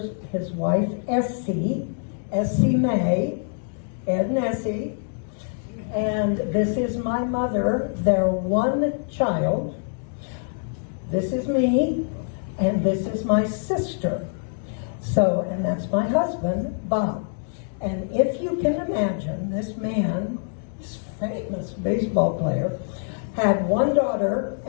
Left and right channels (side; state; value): right; silent; digital silence